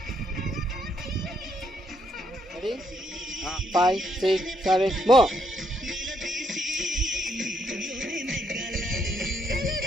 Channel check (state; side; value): normal; both; correlation 0.74